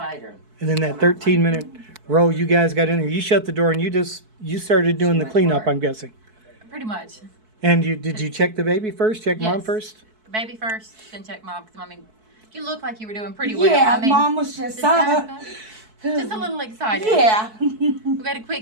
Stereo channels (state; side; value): late; left; 4.6 ms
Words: And then that 13-minute roll you guys got in there, you shut the door and you started doing the went cleanup, hard. I'm guessing. Pretty much. And did you check the baby first? Check mom Yes. first? Baby first, then check mom. Because, I mean, you look like you were doing pretty well. Yeah, I mean, Mom was just, just a little excited. yeah. We got a